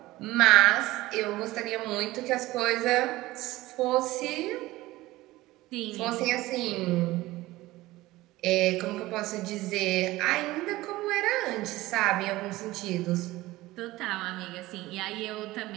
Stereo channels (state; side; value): quieter; left; 18.2 dB